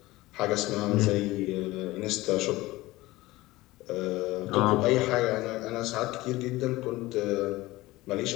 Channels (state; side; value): quieter; right; 19.1 dB